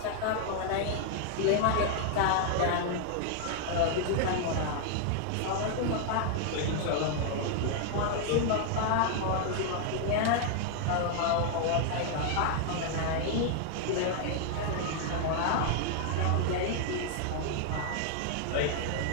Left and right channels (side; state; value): both; different; correlation 0.00